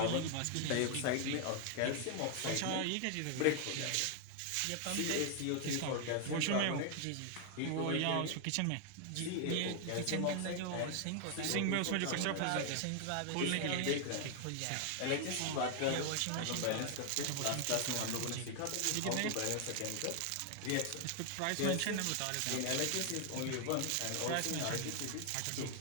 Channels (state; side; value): different; both; correlation 0.00